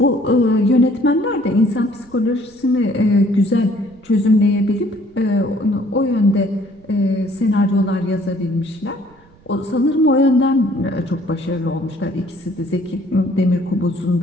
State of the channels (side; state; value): right; noise; rumble, 28 dB below the sound